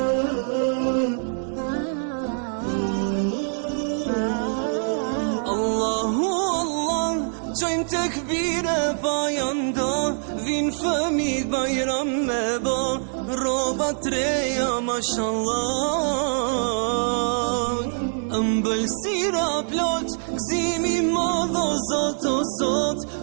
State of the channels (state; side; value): silent; left; digital silence